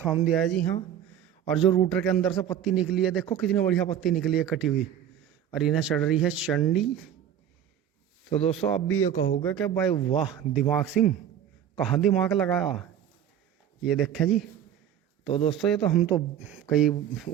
दिया है जी हाँ। और जो रूटर के अंदर से पत्ती निकली है देखो कितनी बढ़िया पत्ती निकली है कटी हुई, और इन्हें चढ़ रही है चंडी। तो दोस्तों अब भी ये कहोगे कि भाई वाह दिमाग सिंह, कहाँ दिमाग लगाया। ये देखें जी। तो दोस्तों ये तो हम तो कई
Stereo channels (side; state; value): left; quieter; 9.8 dB